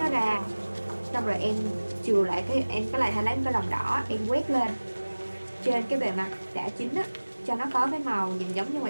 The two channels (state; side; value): inverted; both; correlation -1.00